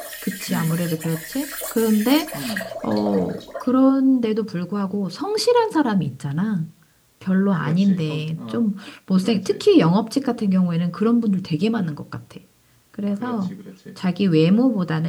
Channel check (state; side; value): identical; both; correlation 1.00